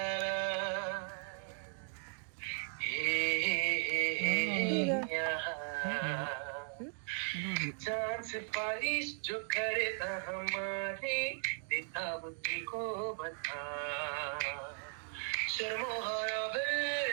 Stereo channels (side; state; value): left; silent; 53 dB below the other